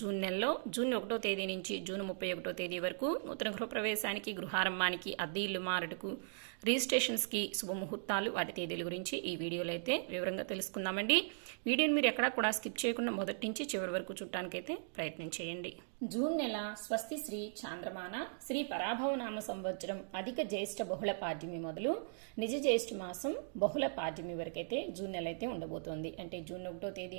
నెలలో జూన్ 1వ తేదీ నుంచి జూన్ 31వ తేదీ వరకు నూతన గృహప్రవేశానికి, గృహారంభానికి, అద్దె ఇల్లు మారటకు, రిజిస్ట్రేషన్స్కి శుభముహూర్తాలు, వాటి తేదీల గురించి ఈ వీడియోలో అయితే వివరంగా తెలుసుకుందామండి. వీడియోని మీరు ఎక్కడా కూడా స్కిప్ చేయకుండా మొదటి నుంచి చివరి వరకు చూడటానికైతే ప్రయత్నం చేయండి. జూన్ నెల స్వస్తి శ్రీ చాంద్రమాన శ్రీ పరాభవనామ సంవత్సరం అధిక జ్యేష్ఠ బహుళ పాడ్యమి మొదలు నిజ జ్యేష్ఠ మాసం బహుళ పాడ్యమి వరకైతే జూన్ నెల అయితే ఉండబోతోంది. అంటే జూన్ 1వ తేదీ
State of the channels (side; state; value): left; silent; digital silence